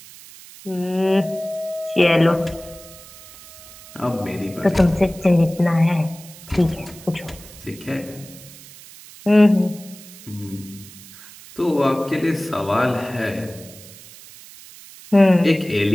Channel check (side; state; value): right; noise; hiss, 19 dB below the sound